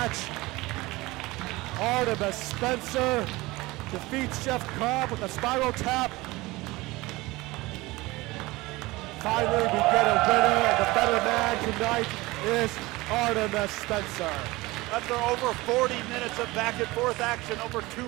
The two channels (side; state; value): left; quieter; 21.0 dB